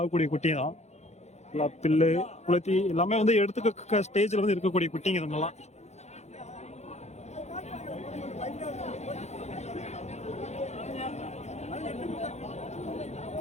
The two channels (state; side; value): late; right; 0.32 ms